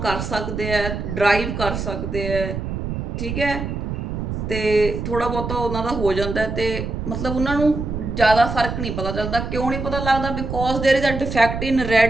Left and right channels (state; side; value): noise; right; rumble, 4 dB below the sound